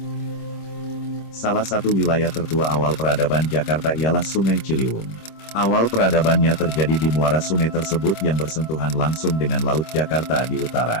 satu wilayah tertua awal peradaban Jakarta ialah Sungai Ciliwung. Awal peradabannya terjadi di muara sungai tersebut yang bersentuhan langsung dengan Laut Jakarta di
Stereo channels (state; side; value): late; right; 26 ms